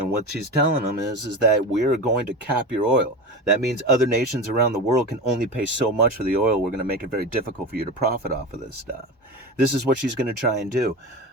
what she's telling them is that we're going to cap your oil. That means other nations around the world can only pay so much for the oil. We're going to make it very difficult for you to profit off of this stuff. This is what she's going to try and do.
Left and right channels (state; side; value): normal; both; correlation 0.26